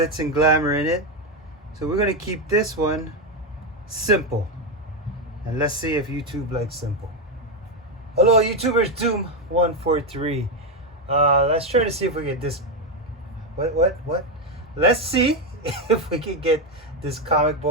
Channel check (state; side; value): normal; both; correlation 0.08